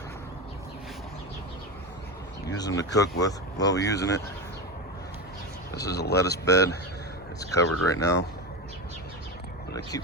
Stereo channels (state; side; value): normal; both; correlation 0.20